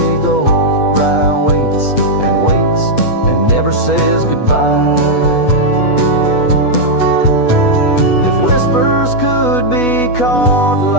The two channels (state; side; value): late; right; 8.2 ms